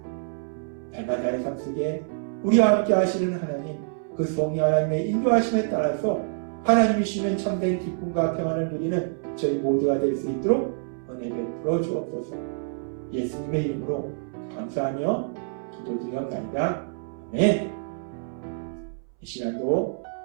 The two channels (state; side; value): silent; left; 61 dB below the other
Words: 날마다의 삶 속에 우리와 함께 하시는 하나님, 그 성령 하나님의 인도하심에 따라서 하나님이 주시는 참된 기쁨과 평안을 누리는 저희 모두가 될 수 있도록 은혜 베풀어 주옵소서. 예수님의 이름으로 감사하며 기도드렸나이다. 아멘. 이 시간도